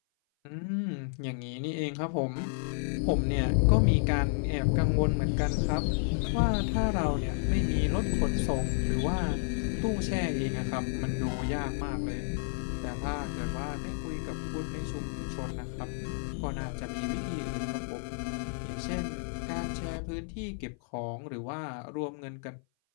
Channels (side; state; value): right; silent; 56 dB below the other